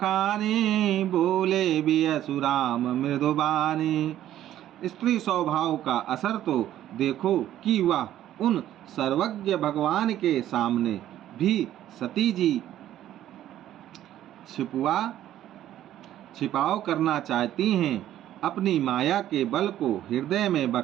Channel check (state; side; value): quieter; left; 12.4 dB